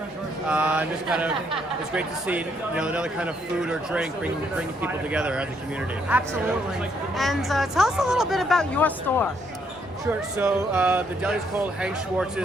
and just kind of, it's great to see, another kind of food or drink bringing people together as a community. Absolutely. And tell us a little bit about your store. Sure. So the deli is called Hank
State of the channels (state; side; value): normal; both; correlation 0.72